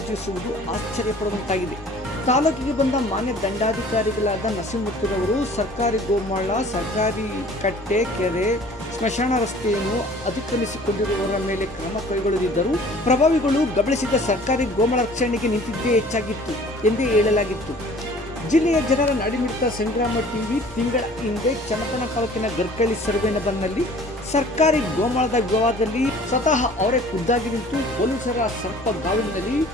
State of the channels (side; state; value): both; normal; correlation 0.50